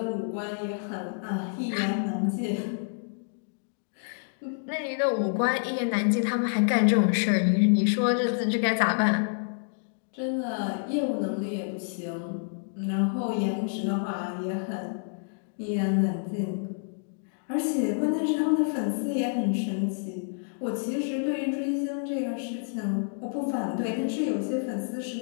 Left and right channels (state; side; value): silent; right; digital silence